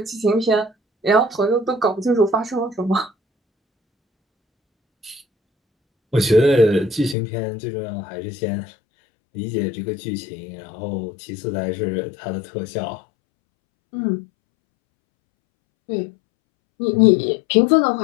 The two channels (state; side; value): drops out; right; at 7.2 s